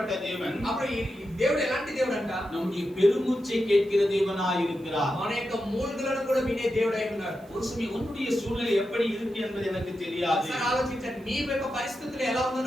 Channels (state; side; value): noise; right; hiss, 29 dB below the sound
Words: தேவன்? అప్పుడు ఈ దేవుడు ఎలాంటి దేవుడు అంట? நம்முடைய பெருமூச்சை கேட்கிற தேவனாய் இருக்கிறார். మన యొక్క మూలుగులను కూడా వినే దేవుడై ఉన్నాడు. ஒரு சமயம் உன்னுடைய சூழ்நிலை எப்படி இருக்கு என்பது எனக்கு தெரியாது. ఒకసారి ఆలోచించండి, నీ యొక్క పరిస్థితులు ఎలా ఉందో